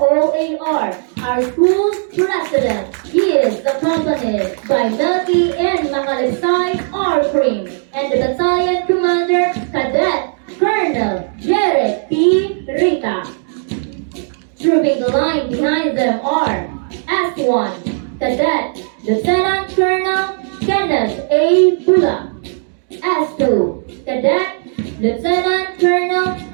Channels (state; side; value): silent; left; digital silence